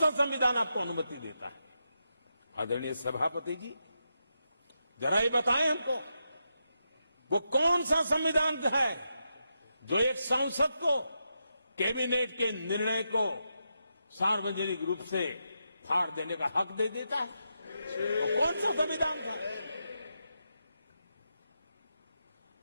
संविधान आपको अनुमति देता है? आदरणीय सभापति जी, जरा ये बताएं हमको, वो कौन सा संविधान है जो एक सांसद को कैबिनेट के निर्णय को सार्वजनिक रूप से फाड़ देने का हक दे देता है? वो कौन सा संविधान था?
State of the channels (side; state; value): both; inverted; correlation -0.85